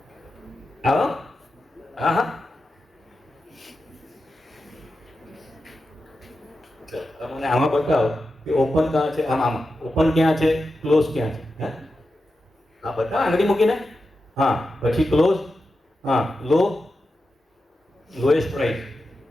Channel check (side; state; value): both; normal; correlation 0.90